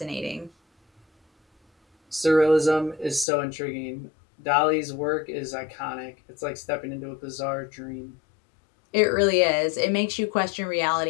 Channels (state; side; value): drops out; right; at 3.2 s